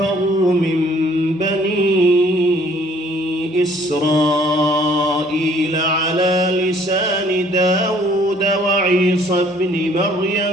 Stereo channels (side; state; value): both; normal; correlation 0.59